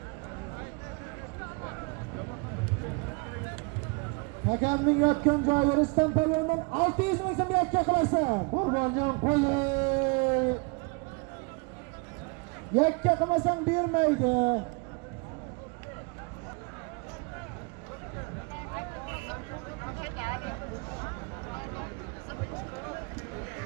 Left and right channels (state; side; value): quieter; left; 30.7 dB